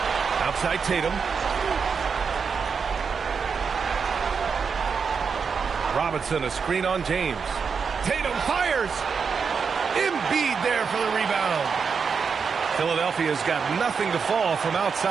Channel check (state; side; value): quieter; left; 5.8 dB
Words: Outside Tatum. Robinson, a screen on James. Tatum fires. Embiid there for the rebound. Philadelphia's got nothing to fall from